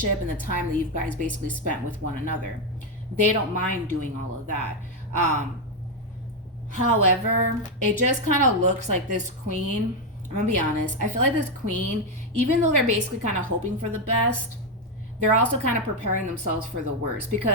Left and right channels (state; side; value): normal; both; correlation 0.05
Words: and the time that you guys basically spent with one another. They don't mind doing all of that. However, it just kind of looks like this queen, I'm going to be honest, I feel like this queen, even though they're basically kind of hoping for the best, they're also kind of preparing themselves for the worst